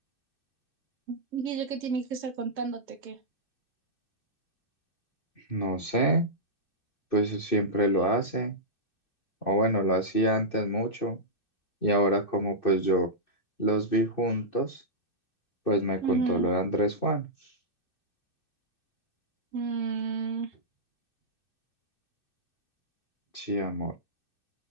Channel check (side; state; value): right; late; 2.6 ms